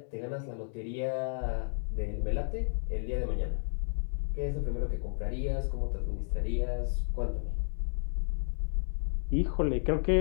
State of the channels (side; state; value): right; silent; digital silence